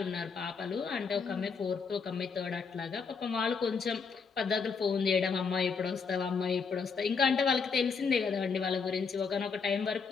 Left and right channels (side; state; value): right; quieter; 5.4 dB